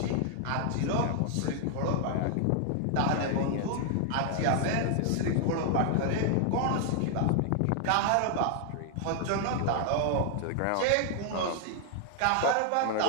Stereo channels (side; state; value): both; different; correlation 0.00